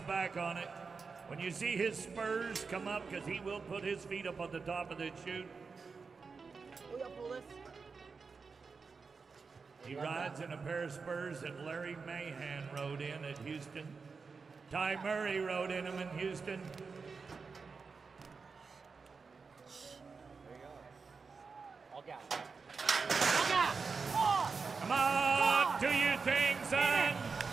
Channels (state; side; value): quieter; left; 4.9 dB